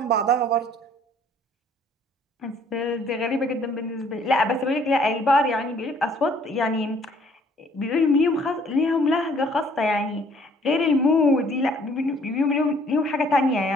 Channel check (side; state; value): both; normal; correlation 0.60